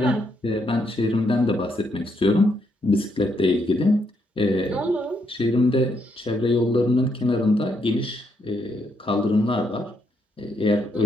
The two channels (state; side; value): normal; both; correlation 0.76